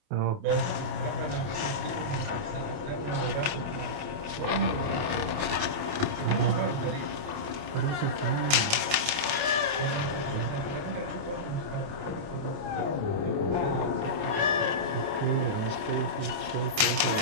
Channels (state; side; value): late; left; 28 ms